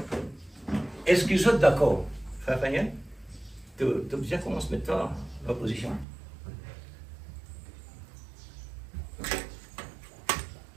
Est-ce que vous êtes d'accord, frère Daniel? Tu as bien comment se mettre en opposition?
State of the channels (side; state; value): left; drops out; at 6.1 s